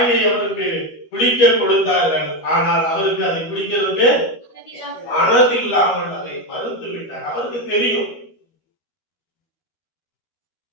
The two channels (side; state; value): right; late; 12 ms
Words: அவருக்கு குடிக்க கொடுத்தார்கள், ஆனால் அவருக்கு அதை குடிக்கிறதுக்கு மனது இல்லாமல் அதை மறுத்து விட்டார். அவருக்கு தெரியும்.